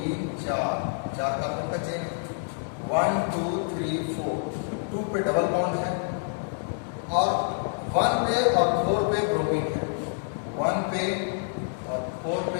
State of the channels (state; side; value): silent; right; digital silence